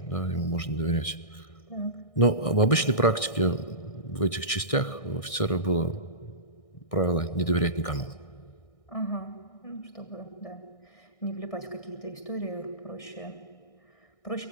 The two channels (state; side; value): late; right; 1.6 ms